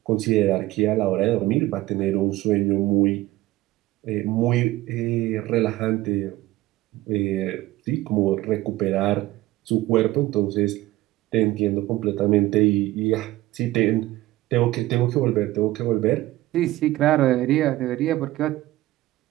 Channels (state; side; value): quieter; left; 17.1 dB